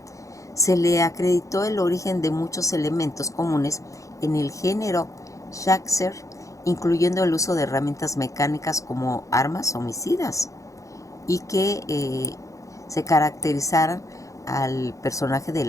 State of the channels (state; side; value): late; right; 0.15 ms